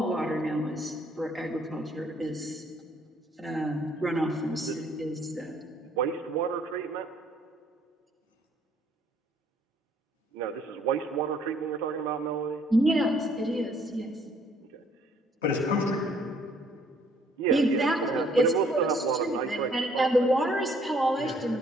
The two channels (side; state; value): both; normal; correlation 0.63